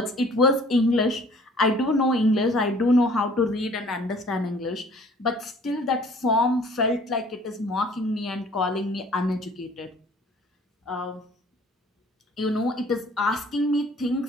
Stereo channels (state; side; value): normal; both; correlation 0.54